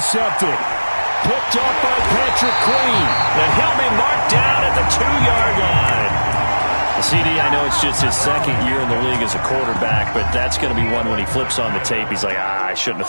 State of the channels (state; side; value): inverted; both; correlation -1.00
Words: Picked up by Patrick Queen. And he'll be marked down at the 2-yard line. CD, I know it's just his 2nd year in the league as a quarterback, but that's going to be one when he flips on the tape. He's like, I shouldn't